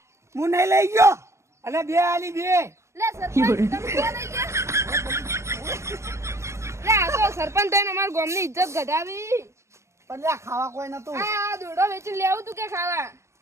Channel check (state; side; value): late; left; 0.14 ms